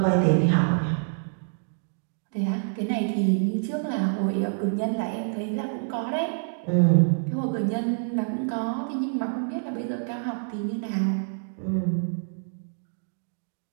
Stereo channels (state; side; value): silent; left; digital silence